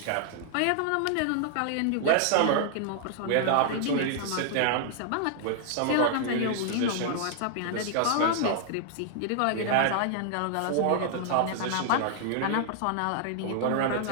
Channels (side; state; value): both; different; correlation -0.01